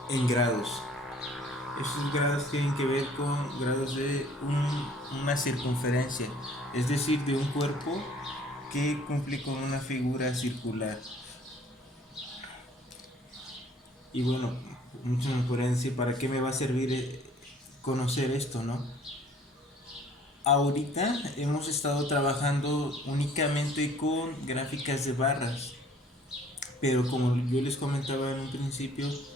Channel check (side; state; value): both; normal; correlation 0.56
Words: en grados. Estos grados tienen que ver con grados de una circunferencia, es decir, de un cuerpo que cumple con una figura circular. Y bueno, muchos me podrían decir, ¿para qué me va a servir conocer esto, no? Ahorita hemos estado trabajando únicamente con gráficas de barras, pero como yo les comentaba en un principio,